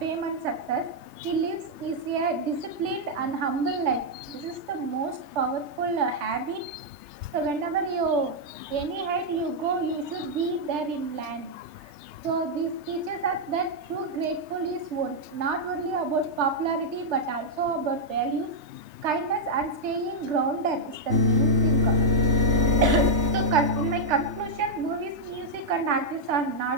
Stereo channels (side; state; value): left; late; 3.3 ms